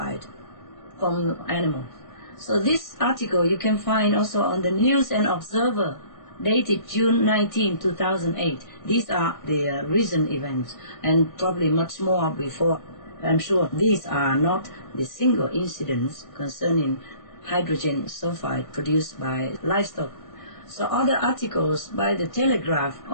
from animals. So this article you can find also on the News and Observer, dated June 19, 2008. These are the recent events, and probably much more before. I'm sure these are not the single incidents concerning hydrogen sulfide produced by livestock. So other articles by the Telegraph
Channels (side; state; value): right; late; 1.6 ms